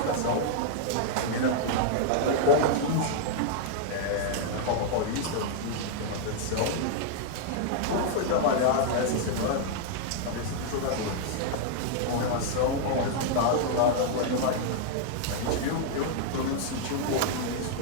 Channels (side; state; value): both; different; correlation -0.01